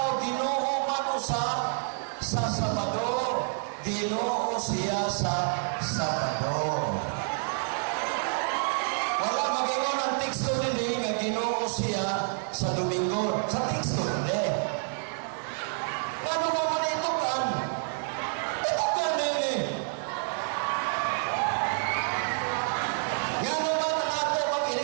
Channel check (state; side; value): silent; left; 59 dB below the other